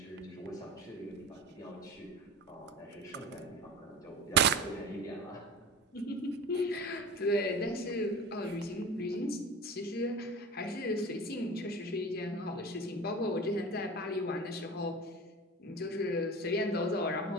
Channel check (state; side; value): normal; both; correlation 0.33